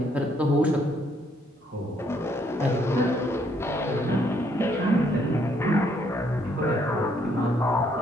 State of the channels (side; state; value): both; normal; correlation 0.69